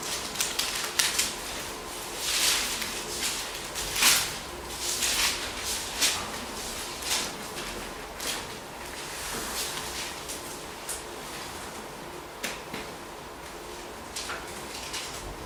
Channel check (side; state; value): both; identical; correlation 1.00